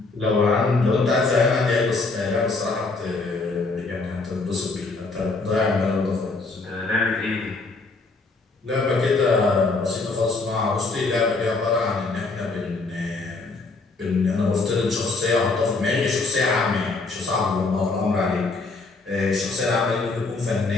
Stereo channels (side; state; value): right; quieter; 3.7 dB